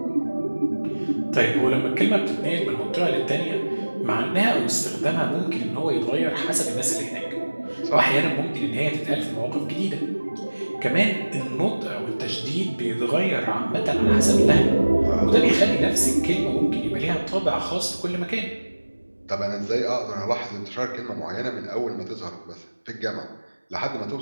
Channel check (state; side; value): inverted; both; correlation -1.00